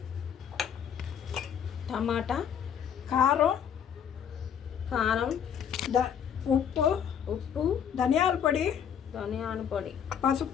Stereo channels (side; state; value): right; quieter; 8.3 dB